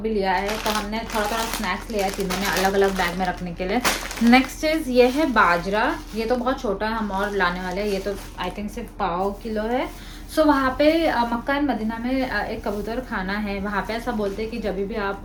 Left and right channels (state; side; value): identical; both; correlation 1.00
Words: भी लिया है। तो हमने थोड़ा थोड़ा स्नैक्स लिया है तीनों ने अलग अलग बैग में रखने के लिए। नेक्स्ट चीज़ ये है बाजरा, ये तो बहुत छोटा है, हम और लाने वाले हैं। ये तो आई थिंक सिर्फ 1.5 किलो है। सो वहाँ पे मक्का एंड मदीना में एक कबूतर खाना है, वहाँ पे ऐसा बोलते हैं कि जब भी